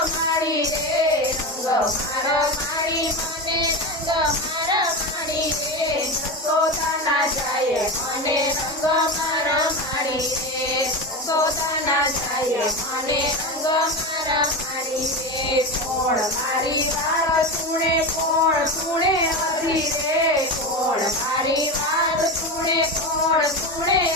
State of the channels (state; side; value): normal; both; correlation 0.21